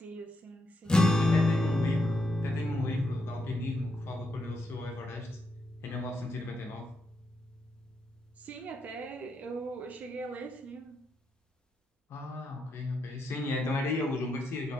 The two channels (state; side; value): normal; both; correlation 0.81